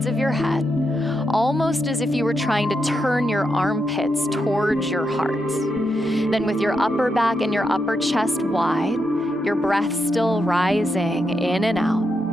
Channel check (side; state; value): both; normal; correlation 0.84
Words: of your head, almost as if you were trying to turn your armpits towards your heart. Then with your upper back and your upper chest wide, your breath still rising in and